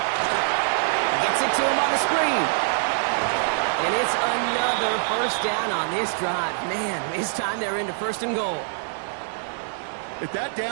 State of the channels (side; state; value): left; silent; digital silence